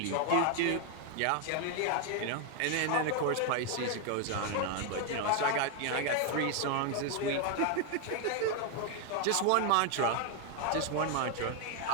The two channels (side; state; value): both; different; correlation 0.01